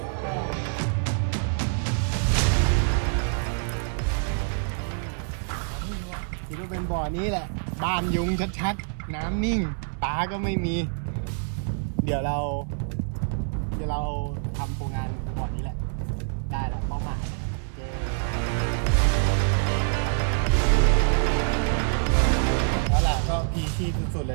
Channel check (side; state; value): left; silent; 61 dB below the other